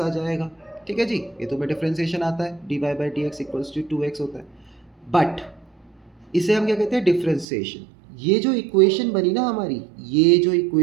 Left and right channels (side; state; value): left; drops out; at 7.5 s